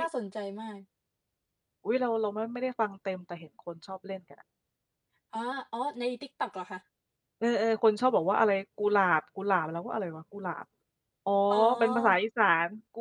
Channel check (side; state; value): both; identical; correlation 1.00